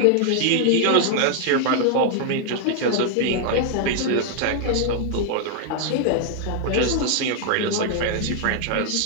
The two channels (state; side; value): different; both; correlation 0.00